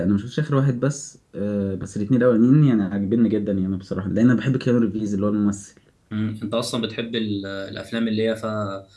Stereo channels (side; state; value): both; identical; correlation 1.00